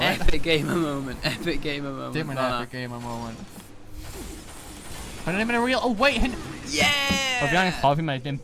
Epic gamer moment. Epic gamer moment. Did an epic gamer moment. But I'm in a real. Oh wait. Yeah. I'll be honest, Harvey might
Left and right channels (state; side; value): identical; both; correlation 1.00